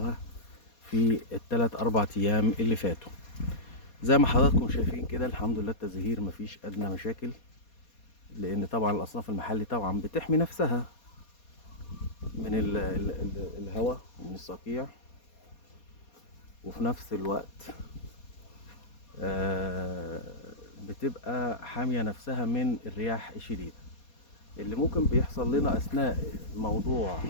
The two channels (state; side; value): late; right; 4.2 ms